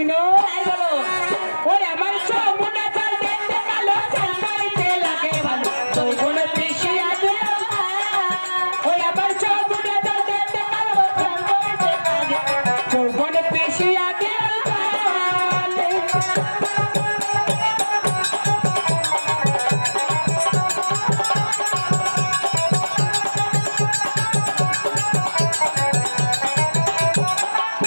তাই বলো। ওই আমার যমুনা জল দেখতে কালো, চান করিতে লাগে ভালো, যৌবনে তৃষে আছে। ওই আমার যমুনা জল দেখতে কালো, চান করিতে লাগে, যৌবনে তৃষে আছে।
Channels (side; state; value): both; inverted; correlation -1.00